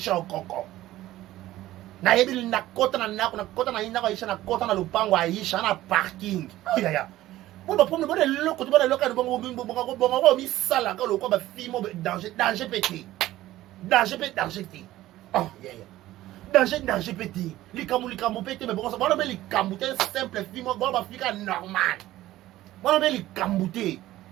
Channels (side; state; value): left; quieter; 15.4 dB